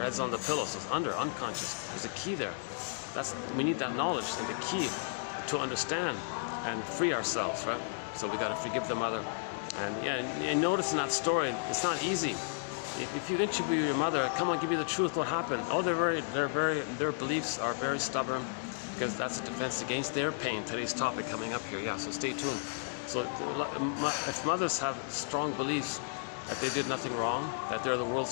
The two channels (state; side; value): silent; right; digital silence